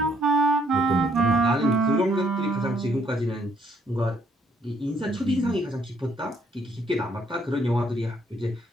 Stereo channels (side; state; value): both; normal; correlation 0.68